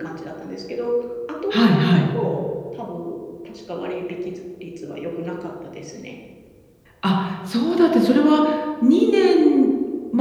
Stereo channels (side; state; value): both; identical; correlation 1.00